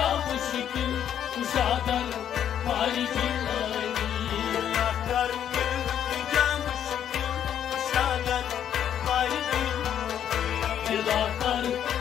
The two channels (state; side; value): quieter; right; 9.6 dB